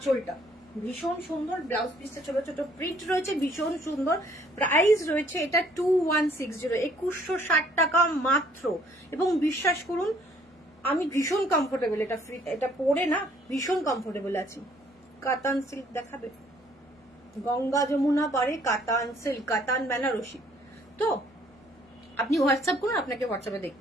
ভীষণ সুন্দর। ব্লাউজ পিসটা ছোট ছোট প্রিন্ট রয়েছে, ভীষণ সুন্দর। প্রাইস রয়েছে এটা 2160, 2160 টাকা মাত্র। এবং বিশ্বাস করুন আমি ভীষণ কমফোর্টেবল, এটা পরে না ভীষণ কমফোর্টেবল আছি। কাতান সিল্ক দেখাবে, গঙ্গা যমুনা পারে কাতান সিল্ক, কাতান বেনারসি। তো আপনি হোয়াটসঅ্যাপ করুন, আপনাকে হোয়াটসঅ্যাপে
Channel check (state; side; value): normal; both; correlation 0.61